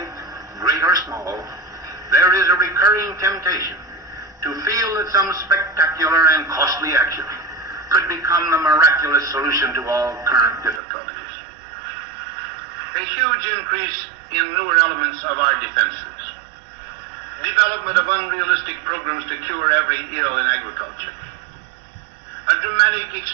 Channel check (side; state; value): left; drops out; at 10.8 s